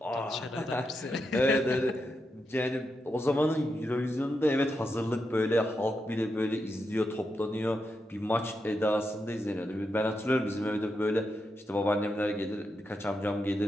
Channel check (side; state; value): both; normal; correlation 0.85